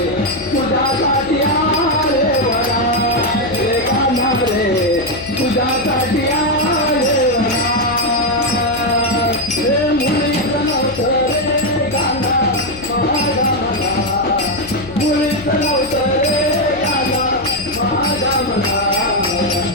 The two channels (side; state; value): left; noise; hum, 16 dB below the sound